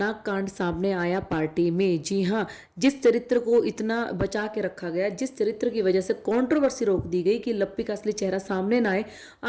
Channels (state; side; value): identical; both; correlation 1.00